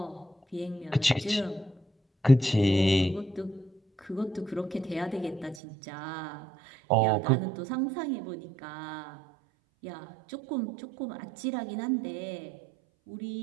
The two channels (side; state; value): left; drops out; at 5.6 s